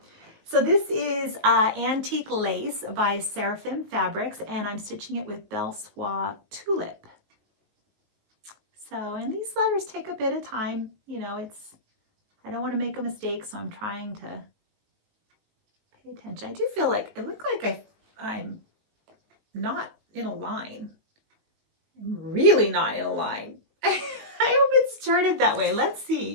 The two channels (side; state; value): left; late; 18 ms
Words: So this is Antique Lace by Seraphim Fabrics, and I'm stitching it with Belle Soie Tulip. So, and these letters take a bit of time. I don't want to make a mistake, so I'm trying to pay attention. I do feel like, it looked like I'm not in a line. I'm really not in a line. I hope it started that way. Let's